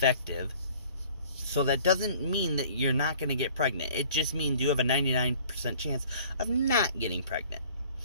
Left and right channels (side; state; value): both; inverted; correlation -0.52